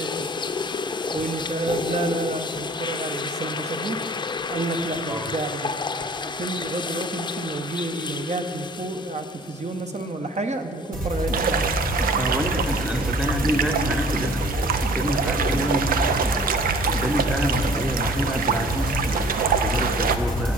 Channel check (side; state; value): both; normal; correlation 0.50